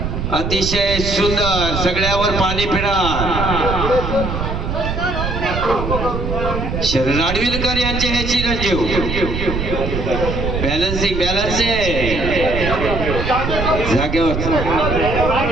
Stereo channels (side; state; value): right; noise; rumble, 3 dB below the sound